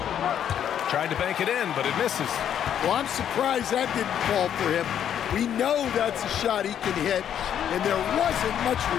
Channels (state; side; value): quieter; right; 9.5 dB